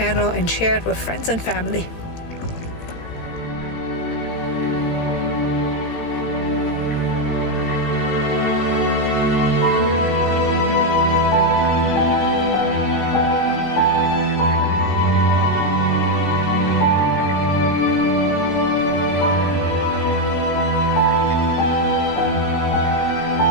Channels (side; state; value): right; late; 18 ms